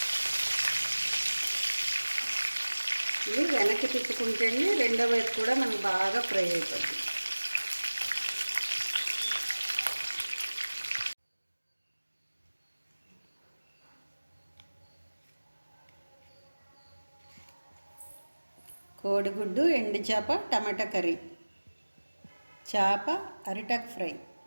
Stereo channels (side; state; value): both; inverted; correlation -1.00